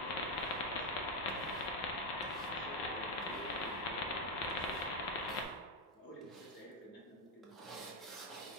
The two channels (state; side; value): normal; both; correlation 0.05